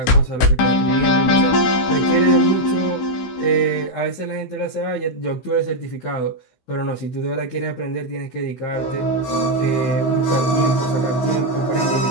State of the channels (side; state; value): right; late; 16 ms